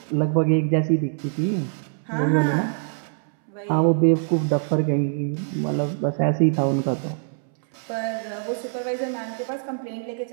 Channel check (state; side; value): silent; left; 63 dB below the other